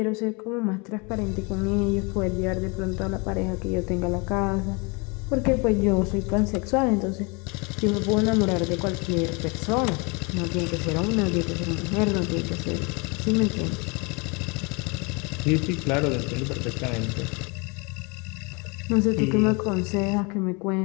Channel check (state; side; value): quieter; right; 30.3 dB